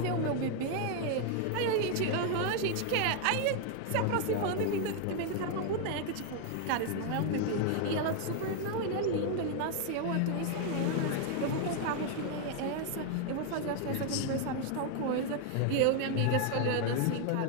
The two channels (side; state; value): both; different; correlation 0.00